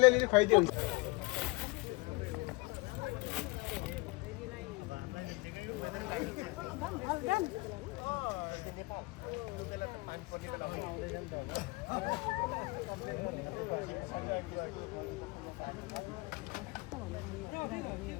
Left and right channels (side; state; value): right; quieter; 25.3 dB